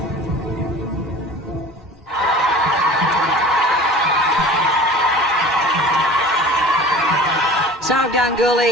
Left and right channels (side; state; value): both; normal; correlation 0.41